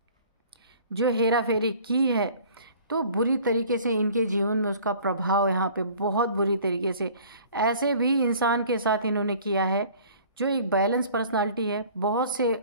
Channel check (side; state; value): both; inverted; correlation -0.50